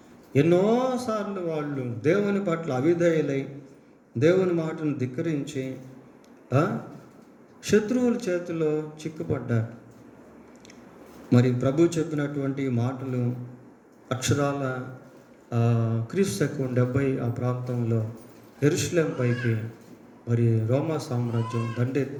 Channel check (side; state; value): both; identical; correlation 1.00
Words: ఎన్నోసార్లు వాళ్ళు దేవుని పట్ల అవిధేయులై దేవుని మాటను ధిక్కరించి శత్రువుల చేతిలో చిక్కుపడ్డారు. మరి ప్రభు చెప్పినటువంటి మాటలు అక్షరాల క్రీస్తు 70 ఆ ప్రాంతంలో యెరూషలేము పైకి మరి రోమా సామ్రాజ్యం